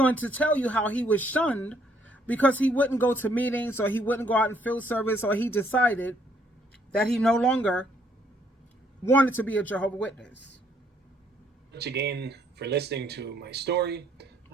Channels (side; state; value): both; normal; correlation 0.68